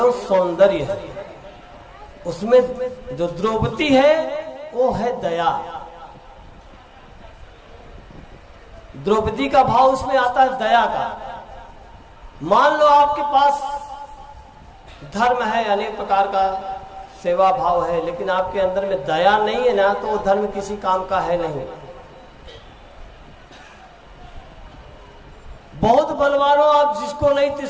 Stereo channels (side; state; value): both; identical; correlation 1.00